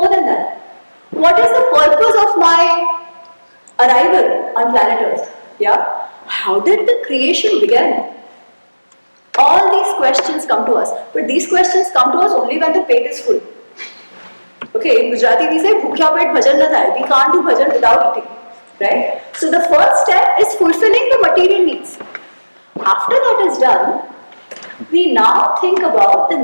than that? What is the purpose of my arrival on planet Earth? Yeah? How did the creation begin? All these questions come to us. But these questions come to us only when the pet is full. Okay, in Gujarati we say, bhukya pet bhajan na thai. We can't do bhajan without eating. Right? So the first step is fulfilling the material needs. After that is done, we now think about the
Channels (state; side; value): inverted; both; correlation -1.00